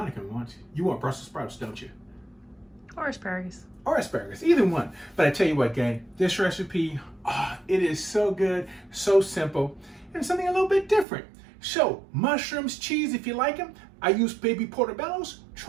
wants. You want Brussels sprouts, don't you? Or asparagus. Or asparagus, either one. But I tell you what, gang, this recipe, it is so good, so simple, and something a little bit different. So, mushrooms, cheese, if you like them. I use baby portobellos.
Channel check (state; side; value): drops out; left; at 11.1 s